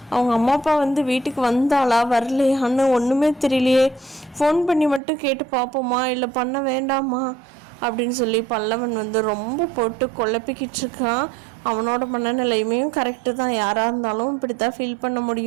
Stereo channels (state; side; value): drops out; left; at 5.0 s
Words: அவங்க அம்மா அப்பா வந்து வீட்டுக்கு வந்தாளா வரலையான்னு ஒன்றுமே தெரியலையே. ஃபோன் பண்ணி மட்டும் கேட்டு பார்ப்போமா இல்லை பண்ண வேண்டாமா அப்படின்னு சொல்லி பல்லவன் வந்து ரொம்ப போட்டு குழப்பிக்கிட்டு இருக்கான். அவனோட மனநிலையுமே கரெக்டு தான், யாராக இருந்தாலும் இப்படி தான் ஃபீல் பண்ண